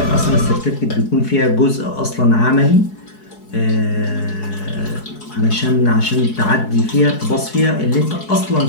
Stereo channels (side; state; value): right; late; 4.7 ms